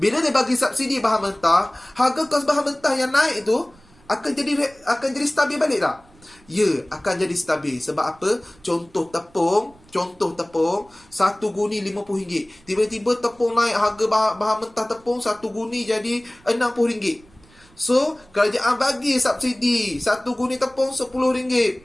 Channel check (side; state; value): right; noise; rumble, 28 dB below the sound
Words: Bila dia bagi subsidi bahan mentah, harga kos bahan mentah yang naik tu akan jadi stabil balik tak? Ya, akan jadi stabil. Sebab apa? Contoh tepung, 1 guni RM50. Tiba-tiba tepung naik, harga bahan mentah tepung 1 guni jadi RM60. So kerajaan bagi subsidi 1 guni tepung RM10.